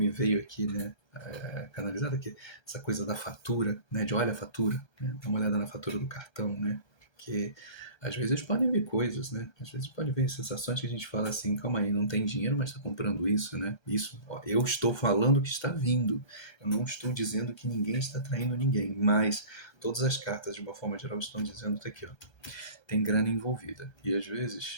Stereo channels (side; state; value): right; late; 1.3 ms